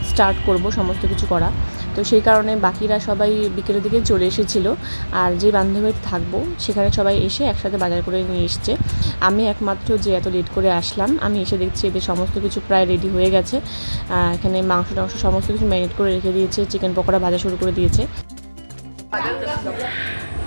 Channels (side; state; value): both; inverted; correlation -1.00